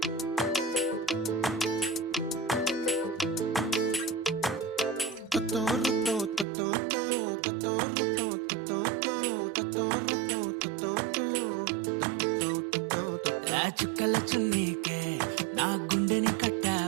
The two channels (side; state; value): left; drops out; at 6.5 s